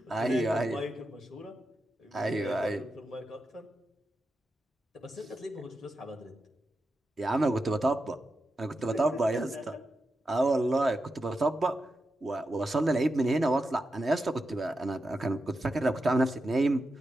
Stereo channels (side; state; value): both; normal; correlation 0.89